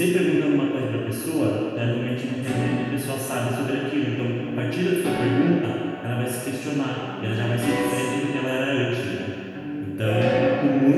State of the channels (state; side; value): identical; both; correlation 1.00